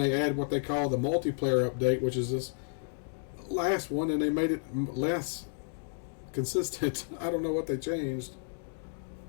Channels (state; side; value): silent; right; digital silence